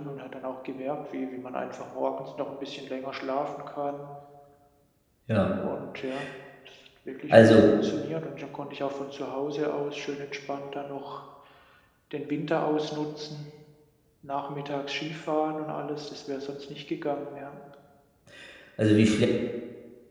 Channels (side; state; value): both; identical; correlation 1.00